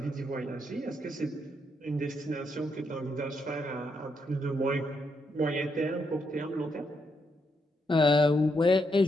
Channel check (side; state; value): both; normal; correlation 0.79